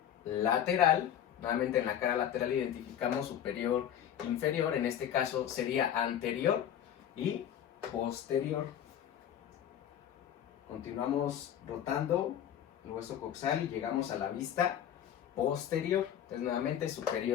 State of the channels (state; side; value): quieter; right; 10.0 dB